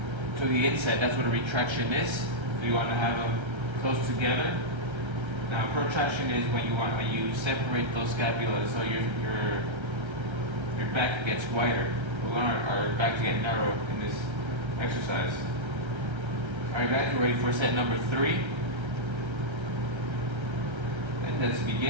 to the inside. That's what a retraction is. So you want to have them close together. Now, protraction is when you separate those scapulas, so your back gets wider. We want our back to get narrow in this exercise. All right, guys, we're ready for set number 3. And let's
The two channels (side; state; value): left; late; 1.3 ms